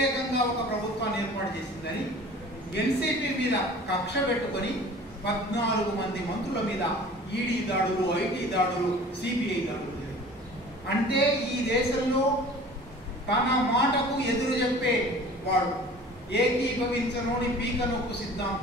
ఒక ప్రభుత్వాన్ని ఏర్పాటు చేసిందని ఎన్సీపీ మీద కక్ష పెట్టుకొని 14 మంది మంత్రుల మీద ఈడీ దాడులు, ఐటీ దాడులు, సిబిఐ దాడులు జరిగాయి. అంటే ఈ దేశంలో తన మాటకు ఎదురు చెప్పే వాడు ఏకీభవించనోని పీక నొక్కు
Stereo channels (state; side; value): normal; both; correlation 0.44